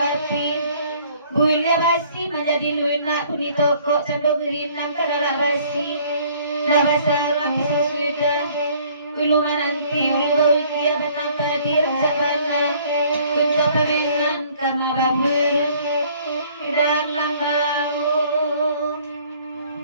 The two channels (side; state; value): both; inverted; correlation -0.58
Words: Builnya basi menjadi lunak kuni toko sando gerinam karena basi dah basah rapi sudah ulu nanti ulu bawi kia benapa dir sabana kunco penengan kama babu dan langau